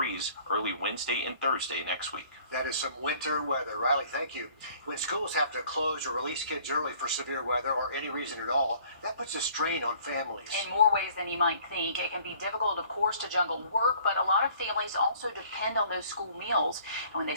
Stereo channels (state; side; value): inverted; both; correlation -0.55